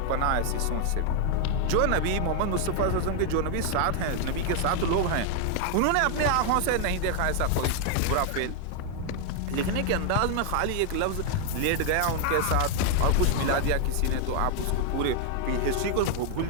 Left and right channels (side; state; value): both; different; correlation 0.00